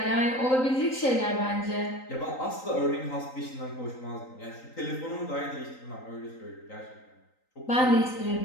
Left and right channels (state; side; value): late; right; 3.9 ms